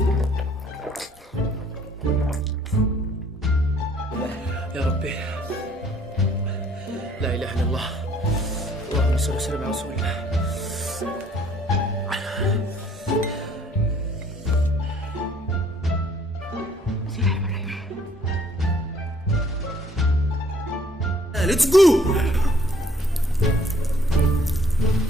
يا ربي لا إله إلا الله. اللهم صل وسلم على رسول الله. Let's go!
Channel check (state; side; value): normal; both; correlation 0.60